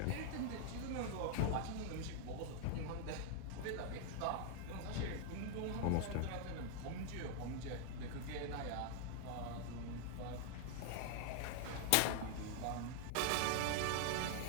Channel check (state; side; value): different; both; correlation 0.00